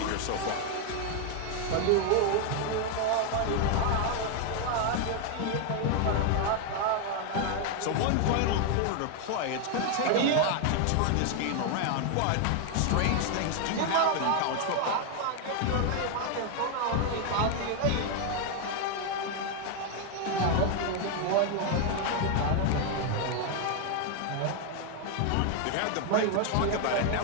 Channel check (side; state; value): both; different; correlation 0.01